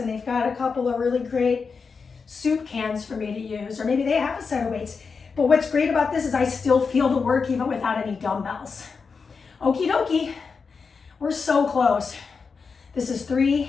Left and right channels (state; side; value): quieter; right; 5.2 dB